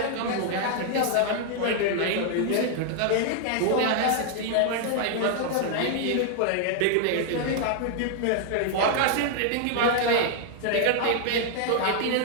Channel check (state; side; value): different; both; correlation 0.00